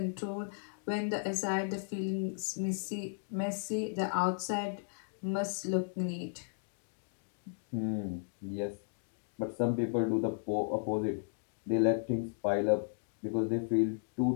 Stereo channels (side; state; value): right; silent; digital silence